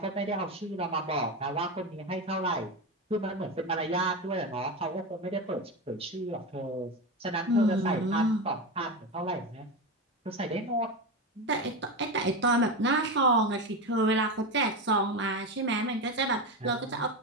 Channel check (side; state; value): both; normal; correlation 0.18